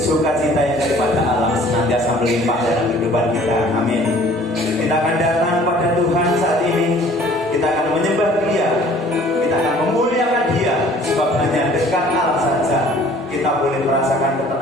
yang daripada Allah senantiasa melimpah dalam kehidupan kita. Amin. Kita akan datang pada Tuhan saat ini. Kita akan menyembah Dia. Kita akan memuliakan Dia. Sebab hanya dekat Allah saja kita boleh merasakan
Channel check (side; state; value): both; normal; correlation 0.52